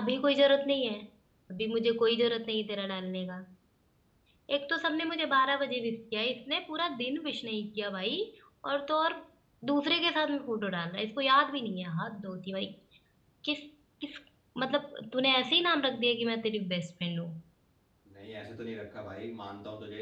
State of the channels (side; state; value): both; identical; correlation 1.00